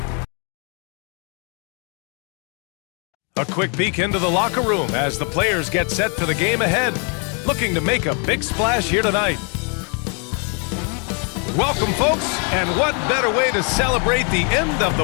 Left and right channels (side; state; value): right; quieter; 38.0 dB